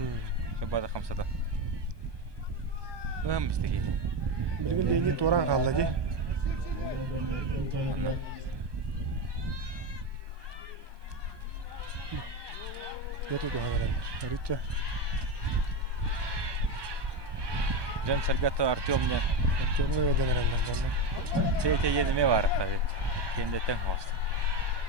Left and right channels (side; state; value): left; late; 1.2 ms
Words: Шабада хамсада. Бистеге. Билген дени туран калды ди. Яту хәнәләр. Рича. Жан Саргата Артемне. Артемга хәнәләр. Петя ене бар хәзер. Кенде тәң хаст.